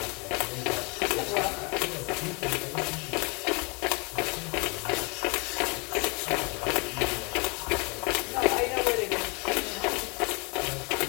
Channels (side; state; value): right; quieter; 31.6 dB